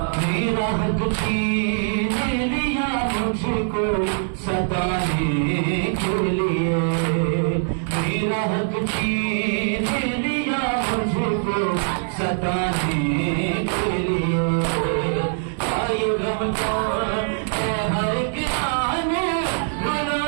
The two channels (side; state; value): left; silent; digital silence